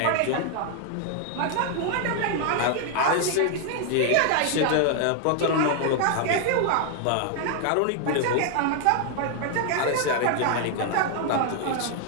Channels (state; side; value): different; both; correlation 0.00